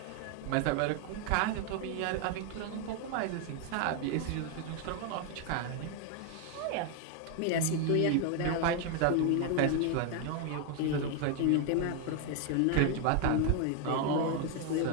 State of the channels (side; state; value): both; different; correlation 0.01